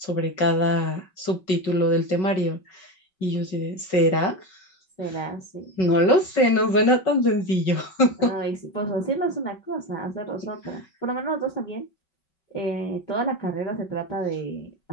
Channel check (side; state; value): right; late; 5.3 ms